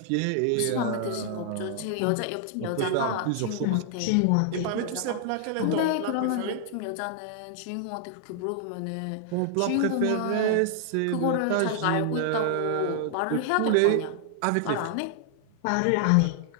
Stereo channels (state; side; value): different; both; correlation 0.00